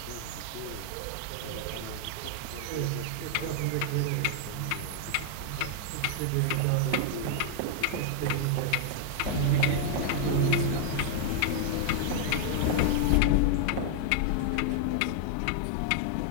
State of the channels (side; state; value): both; different; correlation 0.00